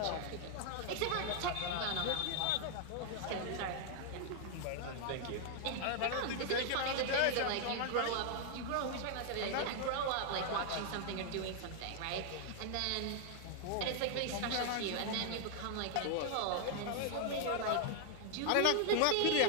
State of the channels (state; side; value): different; both; correlation 0.00